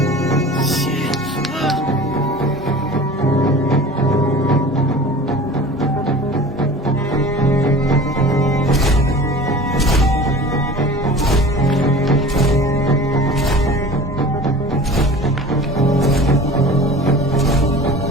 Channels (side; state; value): both; normal; correlation 0.40